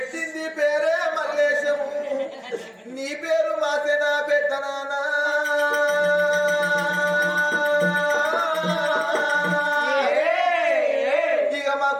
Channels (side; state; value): both; identical; correlation 1.00